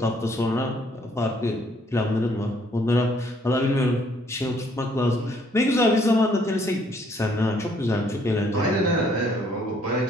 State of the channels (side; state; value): both; normal; correlation 0.65